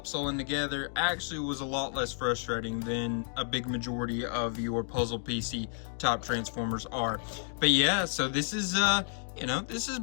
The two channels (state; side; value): silent; right; digital silence